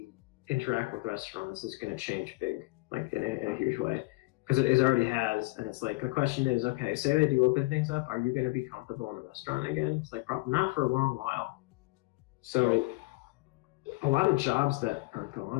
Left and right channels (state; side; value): quieter; right; 24.4 dB